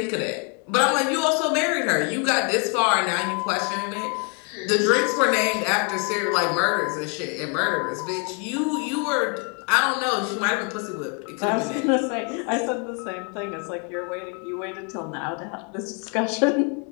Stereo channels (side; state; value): right; quieter; 37.0 dB